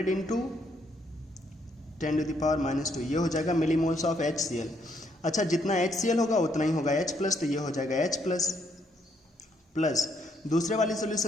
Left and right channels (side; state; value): both; normal; correlation 0.72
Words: इंटू 10⁻², ये हो जाएगा मिलीमोल्स ऑफ HCl। अच्छा, जितना HCl होगा उतना ही होगा H+, तो ये हो जाएगा H+, प्लस दूसरे वाले